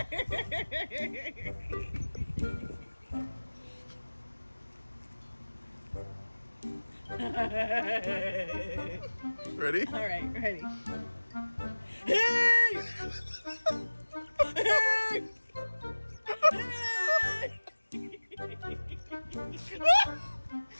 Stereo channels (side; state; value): both; inverted; correlation -1.00